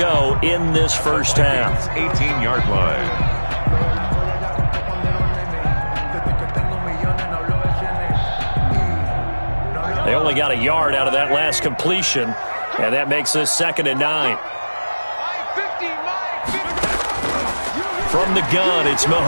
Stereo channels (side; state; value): both; inverted; correlation -1.00